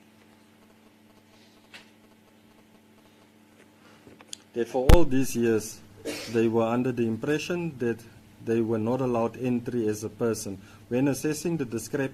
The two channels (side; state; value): both; identical; correlation 1.00